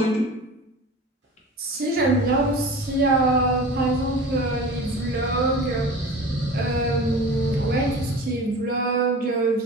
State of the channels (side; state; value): both; normal; correlation 0.37